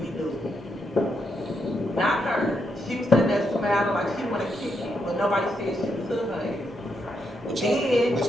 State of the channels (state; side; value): normal; both; correlation 0.80